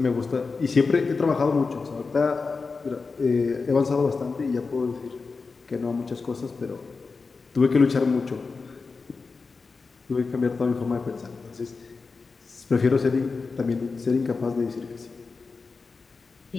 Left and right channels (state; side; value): quieter; right; 4.4 dB